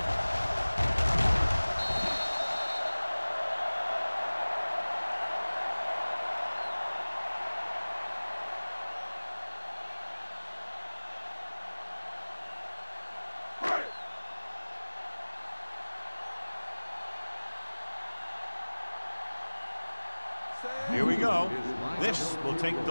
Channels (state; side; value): inverted; both; correlation -1.00